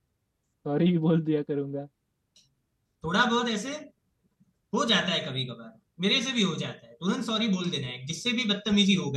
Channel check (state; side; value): identical; both; correlation 1.00